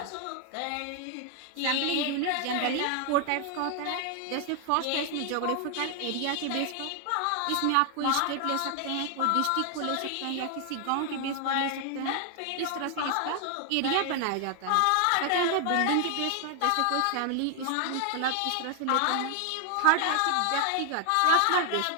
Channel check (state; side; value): different; both; correlation 0.00